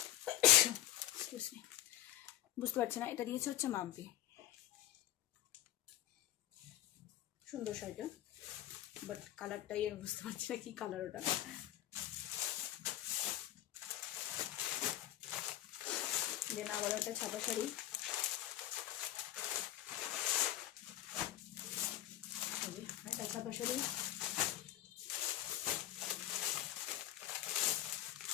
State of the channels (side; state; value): right; quieter; 13.3 dB